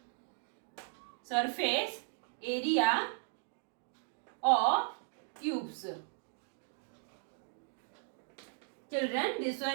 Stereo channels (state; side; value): silent; left; 53 dB below the other